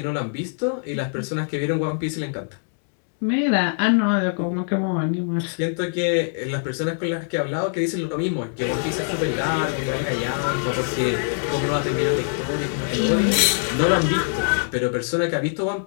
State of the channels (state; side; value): silent; right; digital silence